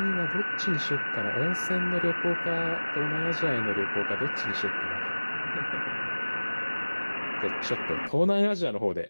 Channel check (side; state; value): both; inverted; correlation -1.00